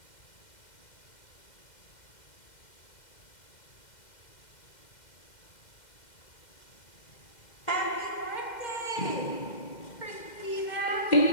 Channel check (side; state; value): right; late; 2.1 ms